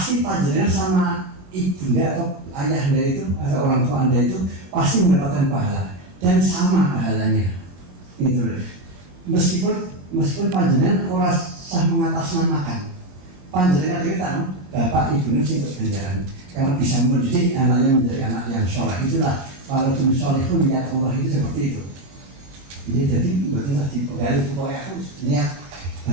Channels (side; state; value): left; late; 22 ms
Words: panjenengan sama ibunda atau ayahnya itu atau orang tua Anda itu pasti mendapatkan pahala. Dan sama pahalanya, gitu loh. Meskipun panjenengan orang sah mengatasnamakan, panjenengan kita bapak ibunya sih untuk ganjaran, karena bisa mendidik anaknya menjadi anak yang soleh. Itulah kalau tuh soleh pun niat Allah itu seperti itu. Ini jadi betul di pegawai pokoknya aku niat